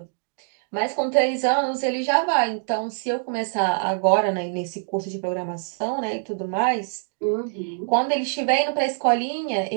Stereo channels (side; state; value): left; silent; digital silence